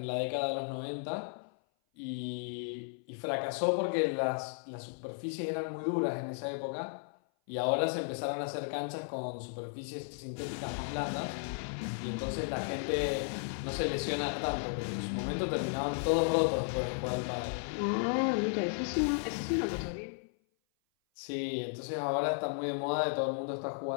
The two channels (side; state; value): right; silent; 55 dB below the other